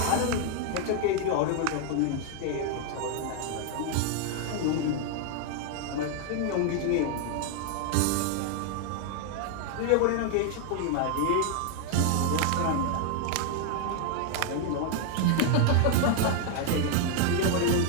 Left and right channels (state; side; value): different; both; correlation 0.00